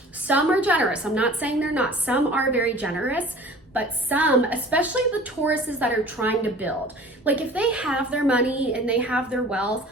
Some are generous. I'm not saying they're not. Some are very generous, but some, especially the Tauruses that are trying to build, like if they have their money and they have their wealth,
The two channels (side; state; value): both; normal; correlation 0.45